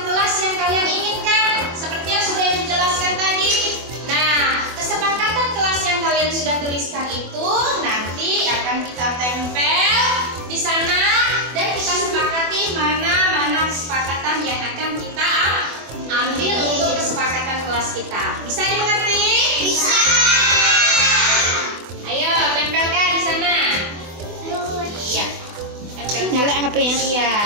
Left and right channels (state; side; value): late; left; 24 ms